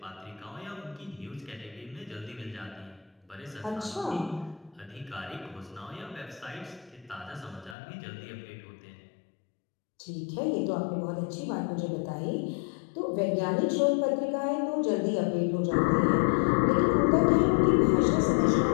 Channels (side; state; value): right; drops out; at 7.8 s